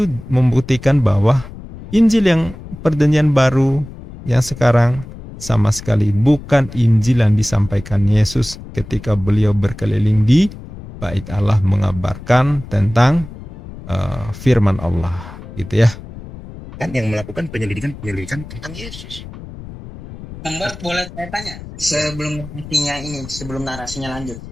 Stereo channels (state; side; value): noise; left; rumble, 14 dB below the sound